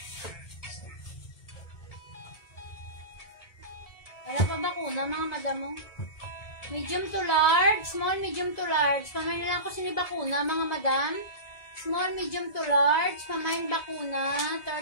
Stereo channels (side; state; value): right; late; 2.0 ms